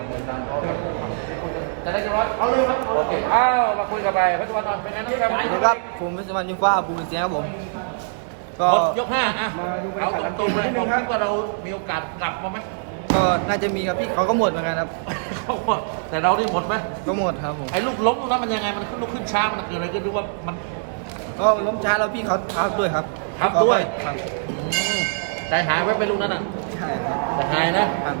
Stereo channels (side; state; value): left; silent; digital silence